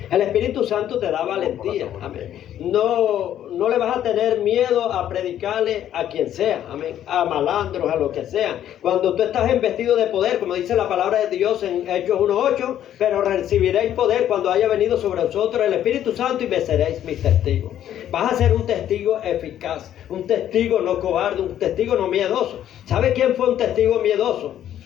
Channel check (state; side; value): quieter; right; 11.0 dB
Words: El Espíritu Santo te da valentía, amén. No le vas a tener miedo a predicarle a quien sea, amén, a malandros, a lo que sea. Cuando tú estás investido de poder, como dice la palabra de Dios en Hechos 1:8, pero recibiréis poder cuando haya venido sobre vosotros el Espíritu Santo y me seréis mis testigos. Vas a ser un testigo eficaz, un testigo no cobarde, un testigo no miedoso. ¿Sabe quién fue un testigo miedoso?